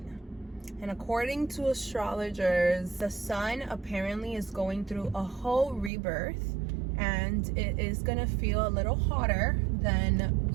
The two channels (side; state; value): left; drops out; at 5.9 s